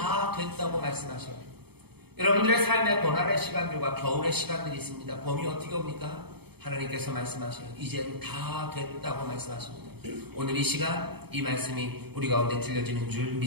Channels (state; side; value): late; left; 0.97 ms